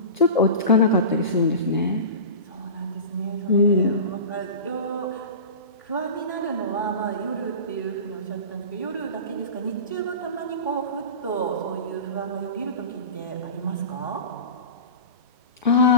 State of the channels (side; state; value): both; inverted; correlation -0.32